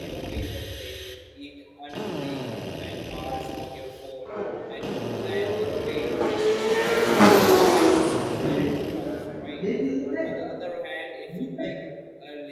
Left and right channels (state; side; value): identical; both; correlation 1.00